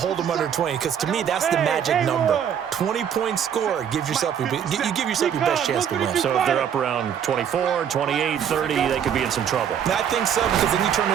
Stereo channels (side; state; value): left; quieter; 8.6 dB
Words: them under 20. Because to me, that's the magic number. 20-point score gives yourself you give yourself your best chance to win. So if they're up around 24, 28, 30, they could be in some trouble. I think so, because then you turn it